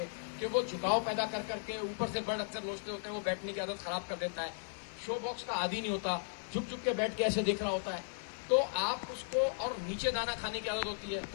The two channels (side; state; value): right; silent; digital silence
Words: कि वो झुकाव पैदा कर करके, ऊपर से बर्ड अक्सर लोचते होते हैं, वो बैठने की आदत खराब कर देता है, शो बॉक्स का आदी नहीं होता, झुक झुक के बैठ के ऐसे देख रहा होता है। तो आप उसको, और नीचे दाना खाने की आदत होती है